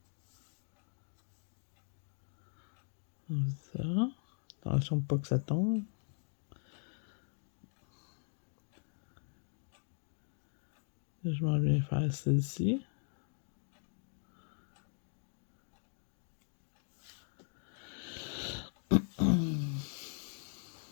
Comme ça. Attention pas que ça tombe. Je m'en viens faire celle-ci.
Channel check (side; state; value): right; silent; 51 dB below the other